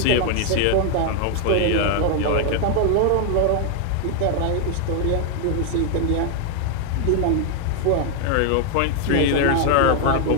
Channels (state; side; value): different; both; correlation 0.00